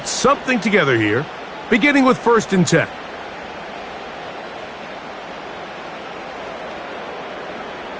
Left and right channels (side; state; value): both; identical; correlation 1.00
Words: something together here, beginning with 1st and 10.